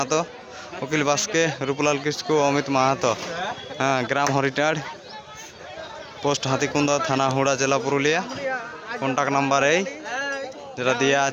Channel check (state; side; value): identical; both; correlation 1.00